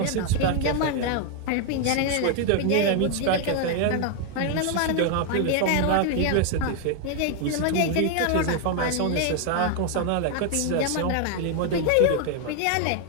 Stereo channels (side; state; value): both; different; correlation 0.00